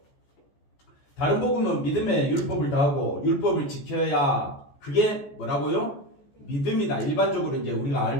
다른 복음은 믿음의 율법을 다하고 율법을 지켜야, 그게 뭐라고요? 믿음이다. 일반적으로 이제 우리가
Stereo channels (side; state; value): right; late; 14 ms